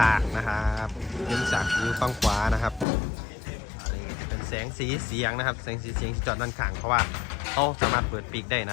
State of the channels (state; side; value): drops out; right; at 2.9 s